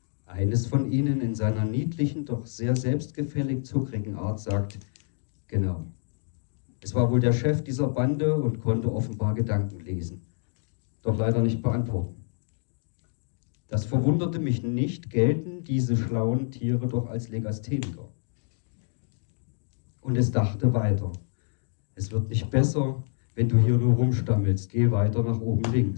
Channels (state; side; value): silent; right; 60 dB below the other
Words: Eines von ihnen in seiner niedlichen, doch sehr selbstgefällig zuckrigen Art sagt, genau. Es war wohl der Chef dieser Bande und konnte offenbar Gedanken lesen, doch leider nicht beantworten. Das verwunderte mich nicht, gelten diese schlauen Tiere doch als Legastheniker. Und es dachte weiter. Es wird nicht besser, wenn du hier nur rumstammelst. Geh weiter nach oben